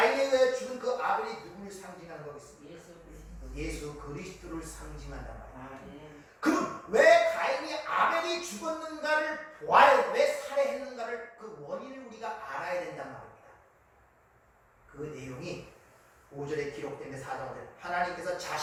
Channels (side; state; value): both; identical; correlation 1.00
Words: 의해 죽은 그 아벨이 누구를 상징하는 거겠습니까? 예수 그리스도를 상징한단 말이에요. 그럼 왜 가인이 아벨이 죽었는가를 보아야 돼. 왜 살해했는가를 그 원인을 우리가 알아야 된단 말입니다. 그 내용이 5절에 기록된 4장에 하나님께서